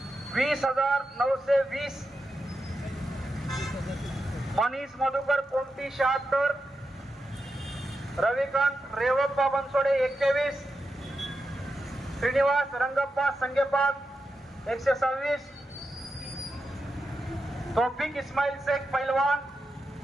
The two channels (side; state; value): both; normal; correlation 0.88